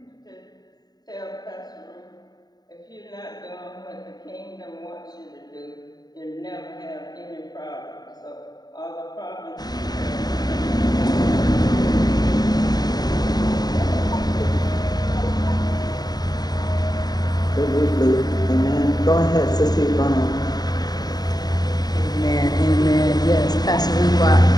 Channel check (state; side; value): late; right; 0.19 ms